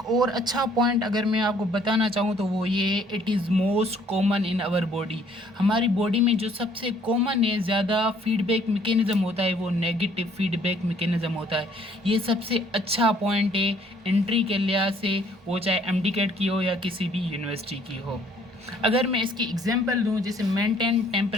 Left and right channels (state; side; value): normal; both; correlation 0.61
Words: और अच्छा पॉइंट अगर मैं आपको बताना चाहूँ तो वो ये है, it is most common in our body. हमारी बॉडी में जो सबसे कॉमन है, ज़्यादा फीडबैक मैकेनिज्म होता है, वो नेगेटिव फीडबैक मैकेनिज्म होता है। ये सबसे अच्छा पॉइंट है एंट्री के लिहाज से, वो चाहे एमडीकेट की हो या किसी भी यूनिवर्सिटी की हो। अगर मैं इसकी एग्जांपल दूं, जैसे maintain